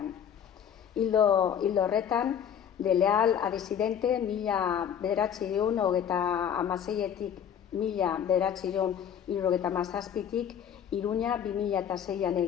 Hildo horretan, de leal a disidente, 1936-etik 1937-tik, Iruña 2006an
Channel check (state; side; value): quieter; right; 8.8 dB